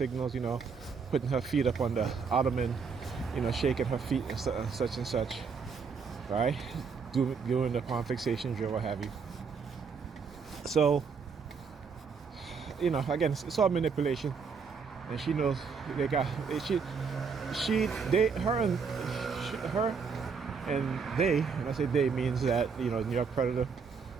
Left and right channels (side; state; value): left; quieter; 5.6 dB